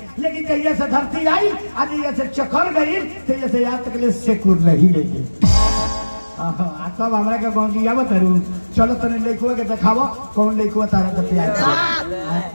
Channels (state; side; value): inverted; both; correlation -1.00